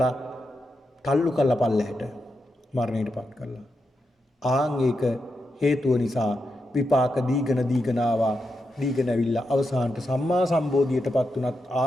තල්ලු කරලා පල්ලෙහාට මරණයටපත් කළා. ආන් ඒක හේතුව නිසා විපාක දීගෙන ආවා. දීගෙන ඇවිල්ලා අවසානට සම්මා සම්බෝධියටපත් උනත්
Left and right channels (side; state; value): both; normal; correlation 0.86